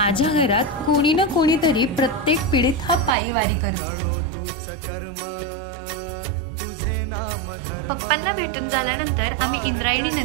घरात कोणी ना कोणीतरी प्रत्येक पिढीत हा पायी वारी करतो। पप्पांना भेटून झाल्यानंतर आम्ही इंद्रायणी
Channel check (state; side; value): drops out; left; at 3.2 s